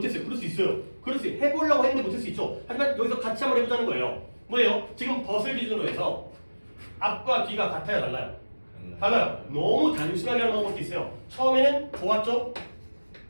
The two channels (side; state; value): both; inverted; correlation -1.00